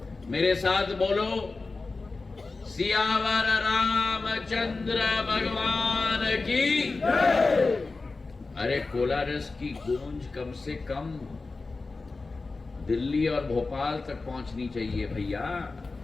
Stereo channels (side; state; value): right; quieter; 3.8 dB